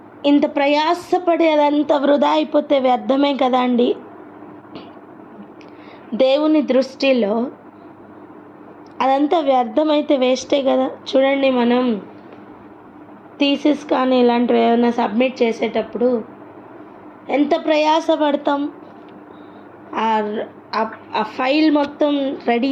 ఇంత ప్రయాసపడి అదంతా వృధా అయిపోతే వ్యర్థమే కదా అండి. దేవుని దృష్టిలో అదంతా వ్యర్థమైతే వేస్టే కదా. చూడండి, మనం థీసిస్ కానీ ఇలాంటివి ఏమైనా సబ్మిట్ చేసేటప్పుడు ఎంత ప్రయాసపడతాం. ఆ ఫైల్ మొత్తం రెడీ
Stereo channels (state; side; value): identical; both; correlation 1.00